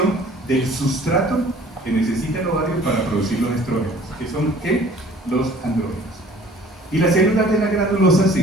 del sustrato que necesita el ovario para producir los estrógenos, que son ¿qué? Los andrógenos. Y las células de la granulosa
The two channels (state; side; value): normal; both; correlation 0.51